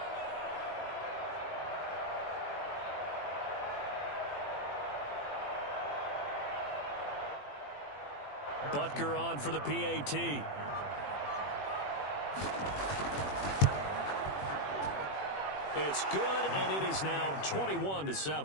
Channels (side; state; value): right; late; 21 ms